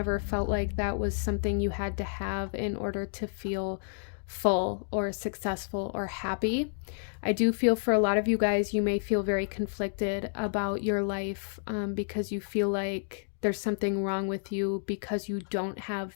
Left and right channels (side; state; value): right; silent; digital silence